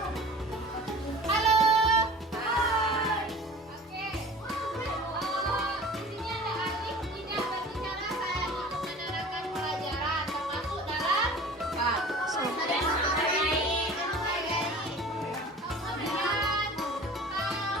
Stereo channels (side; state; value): both; normal; correlation 0.42